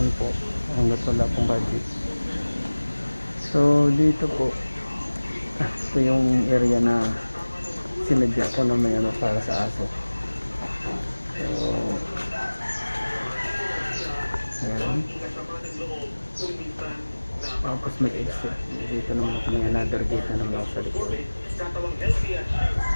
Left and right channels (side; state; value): both; inverted; correlation -1.00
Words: po hanggat wala pong budget. So dito po, ito yung area na sinadya ko na may para sa aso. So ayan, tapos may exit dito naman ako, may another gate na naman ako sa likod.